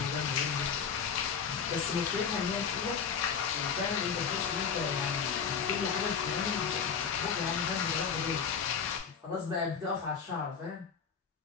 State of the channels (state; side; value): quieter; right; 6.6 dB